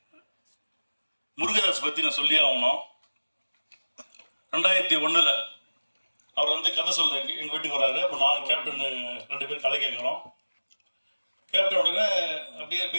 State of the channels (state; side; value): inverted; both; correlation -1.00